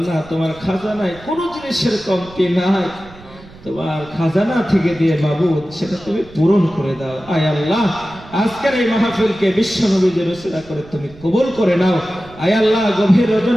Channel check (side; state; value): right; noise; rumble, 21 dB below the sound